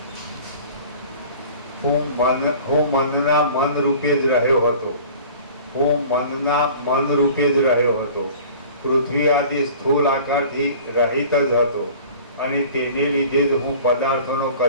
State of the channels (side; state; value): both; inverted; correlation -0.44